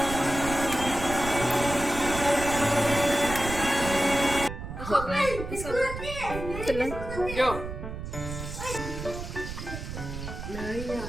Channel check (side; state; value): right; noise; rumble, 8 dB below the sound